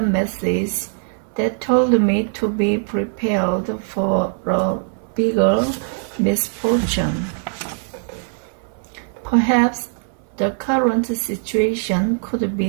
message that told me to be prepared for a bigger misfortune. Perhaps the current situation could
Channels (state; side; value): silent; left; 60 dB below the other